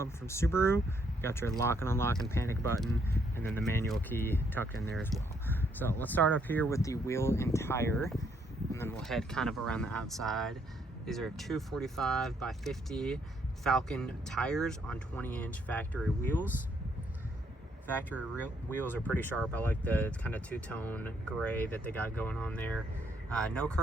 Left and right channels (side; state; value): both; normal; correlation 0.71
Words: from Subaru. You got your lock and unlock and panic button, and then the manual key tucked in there as well. So let's start up here with the wheel and tire, and then we'll head kind of around the outside. These are 245 by 50 Falcon tires on 20-inch factory wheels. Factory wheels are pretty sharp. I like the kind of two-tone gray that they got going on there. No